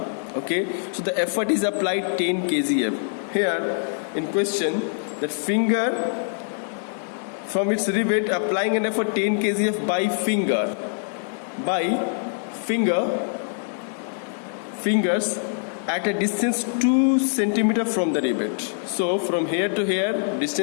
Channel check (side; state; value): right; silent; digital silence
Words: Okay, so the effort is applied 10 kgf. Here in question, the finger from its rivet applying an effort 10 kgf by fingers at a distance 2 cm from the rivet. So from here to here